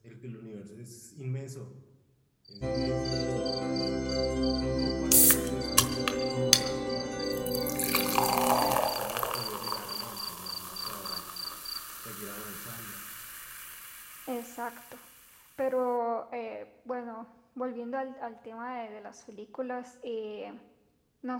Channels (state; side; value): identical; both; correlation 1.00